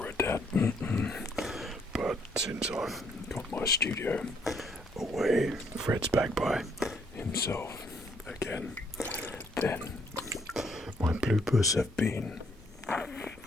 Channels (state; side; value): normal; both; correlation 0.68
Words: a dad. But since I've got my studio away, Fred's back by himself again, then my bloopers have been